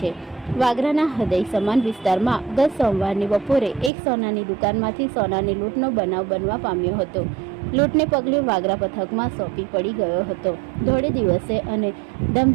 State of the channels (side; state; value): left; drops out; at 3.9 s